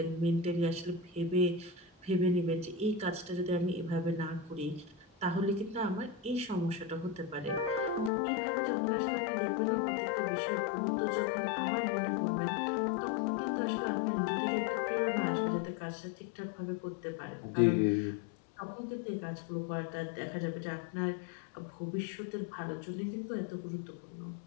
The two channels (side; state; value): right; drops out; at 8.1 s